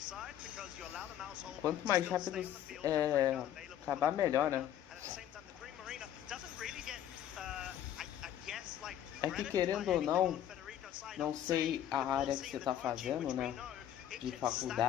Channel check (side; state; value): right; quieter; 11.0 dB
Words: Quanto mais rápido acabar, melhor, né? É que querendo ou não, não sei a área que você está fazendo, né? De